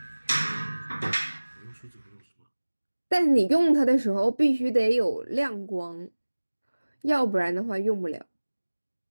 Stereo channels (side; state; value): both; inverted; correlation -1.00